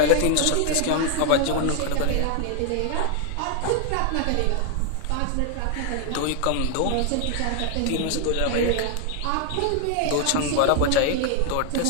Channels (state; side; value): different; both; correlation 0.00